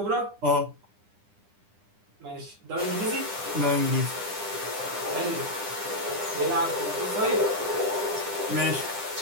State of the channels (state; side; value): late; left; 9.9 ms